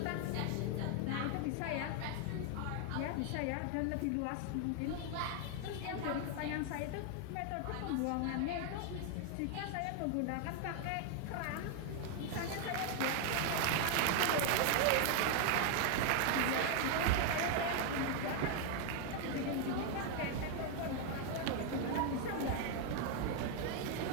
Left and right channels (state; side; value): different; both; correlation 0.00